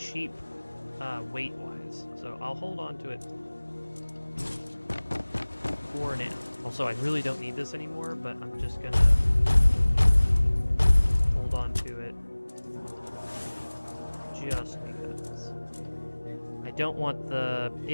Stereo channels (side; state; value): both; inverted; correlation -1.00